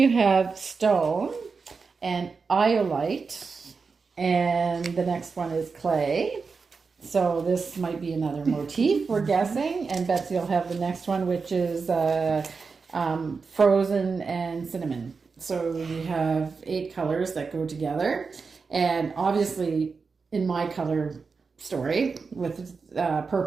have stone and iolite, and the next one is clay. So this might be another motif, we're guessing. And Betsy will have the next one, which is frozen and cinnamon. So we have 8 colors that go together, and obviously in my color story with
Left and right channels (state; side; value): quieter; left; 4.9 dB